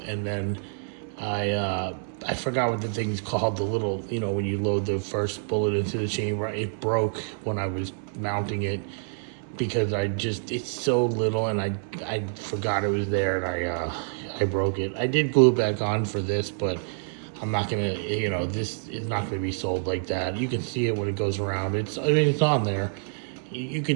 and then I forgot what the thing's called, the little, when you load the first bullet into the chamber. It broke when I was mounting it because it's so little, and I forgot it was there, and I broke it. I did glue it back on for this, but I'm not gonna, this is not gonna be sold like that. You can see it when it goes around. It's on there. You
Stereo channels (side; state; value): left; silent; 60 dB below the other